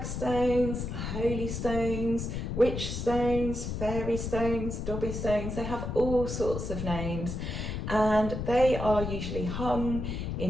holy stones, witch stones, fairy stones, dobby stones. They have all sorts of names, and they are usually hung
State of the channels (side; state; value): left; noise; rumble, 4 dB below the sound